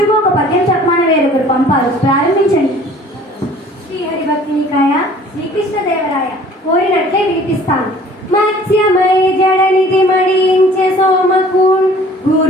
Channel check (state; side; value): normal; both; correlation 0.51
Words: ఒక పద్యం చెప్పమని వేరొకరు పంపారు. ప్రారంభించండి. శ్రీహరి భక్తి నికాయ, శ్రీకృష్ణదేవరాయ. కోరినట్లే వినిపిస్తాను. మత్స్యమై జడనిధి మడించే సోమకూన్,